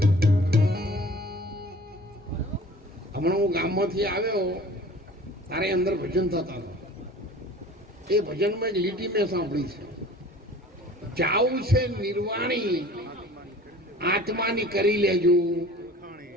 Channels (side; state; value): both; normal; correlation 0.45